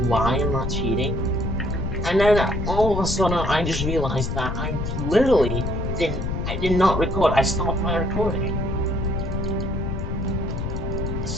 why I'm not cheating. And then all of a sudden, I just realized that I literally I did not record. I stopped my recording.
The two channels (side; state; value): left; noise; rumble, 2 dB below the sound